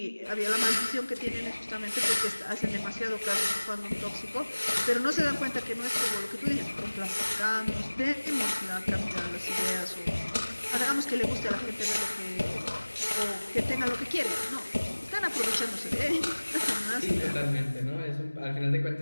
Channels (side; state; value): both; inverted; correlation -1.00